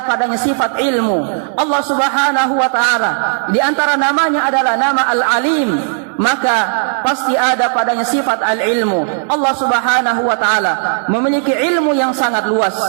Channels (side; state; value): left; silent; digital silence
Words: padanya sifat ilmu. Allah Subhanahu wa taala di antara namanya adalah nama Al-Alim, maka pasti ada padanya sifat al-ilmu. Allah Subhanahu wa taala memiliki ilmu yang sangat luas.